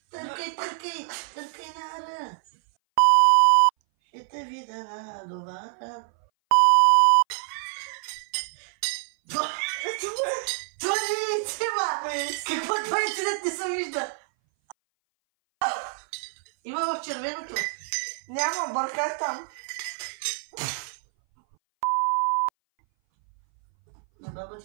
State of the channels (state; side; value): silent; left; 59 dB below the other